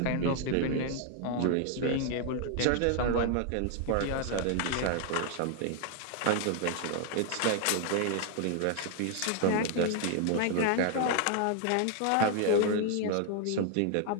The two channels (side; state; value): both; different; correlation 0.00